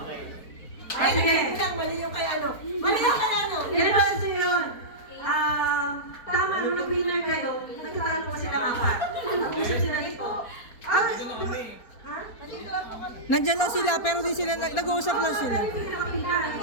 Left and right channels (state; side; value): late; right; 4.3 ms